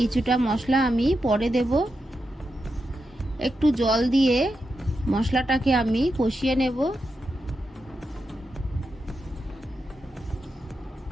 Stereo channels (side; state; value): both; normal; correlation 0.87